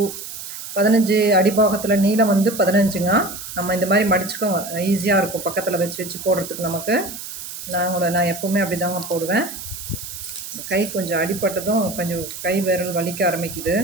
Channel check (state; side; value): noise; right; hiss, 10 dB below the sound